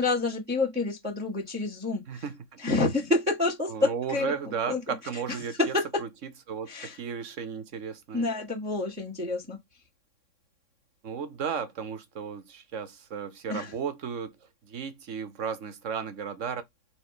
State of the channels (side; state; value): left; late; 3.6 ms